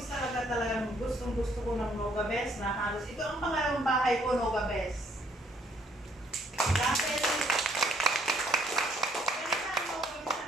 talagang gustong-gusto ko ng Nogabes na halos. Ito ang pangalawang bahay ko, Nogabes. Dahil,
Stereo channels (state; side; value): normal; both; correlation 0.66